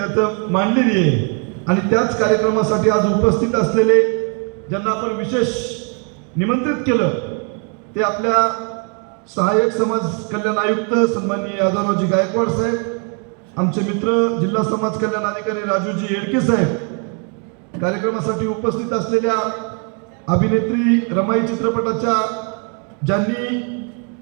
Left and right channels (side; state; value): left; quieter; 38.8 dB